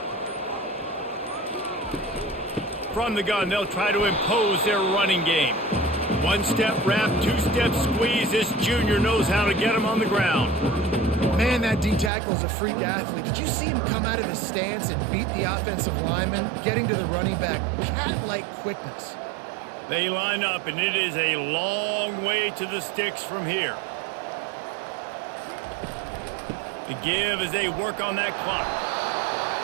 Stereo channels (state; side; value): drops out; left; at 12.1 s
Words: From the gun, they'll try to impose their running game. One-step wrap, two-step squeeze. This junior knows how to get him on the ground. Man, that D tackle is a freak athlete. Did you see him come out of his stance and beat the offensive lineman, getting to the running back? Cat-like quickness. They line up, and it is a long way to the sticks from here. The give as they work on that clock.